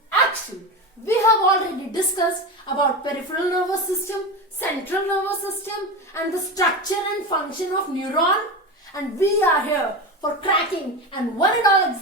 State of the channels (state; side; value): normal; both; correlation 0.22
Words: action. We have already discussed about peripheral nervous system, central nervous system and the structure and function of neuron, and we are here for cracking and one and all